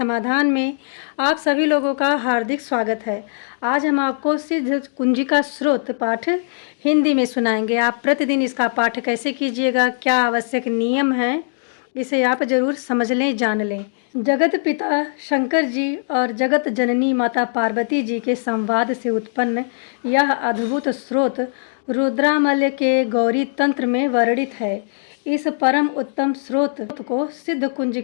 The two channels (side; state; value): right; silent; digital silence